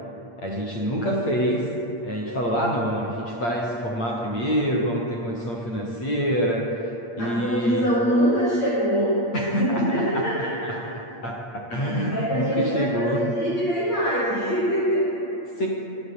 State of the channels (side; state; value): right; late; 8.6 ms